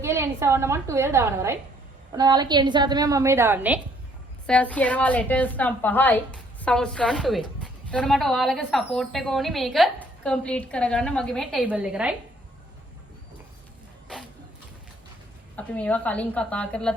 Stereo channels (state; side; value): normal; both; correlation 0.63